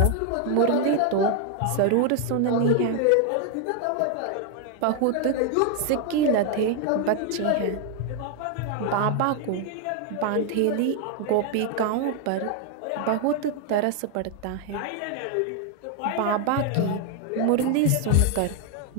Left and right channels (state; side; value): different; both; correlation 0.00